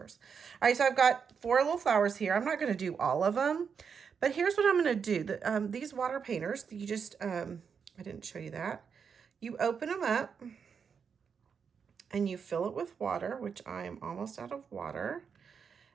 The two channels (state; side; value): quieter; left; 6.4 dB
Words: All right, so I've got 4 little flowers here. I'm not going to do all of them, but here's what I'm going to do. These water painters, you just, I didn't show you that. You open them up and you fill it with water, which I am almost out of water.